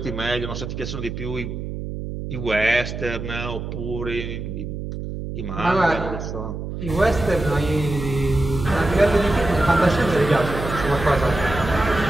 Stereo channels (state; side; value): noise; right; hum, 7 dB below the sound